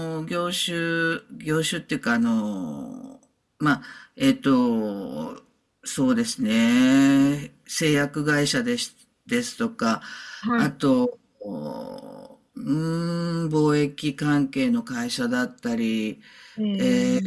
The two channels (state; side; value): identical; both; correlation 1.00